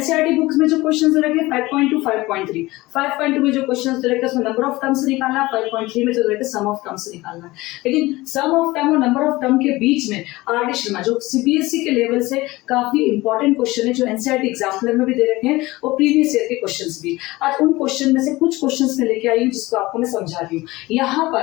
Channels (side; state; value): right; quieter; 20.0 dB